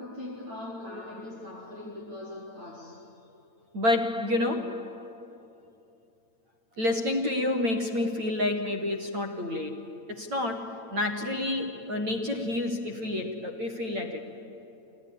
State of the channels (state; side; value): late; left; 8.9 ms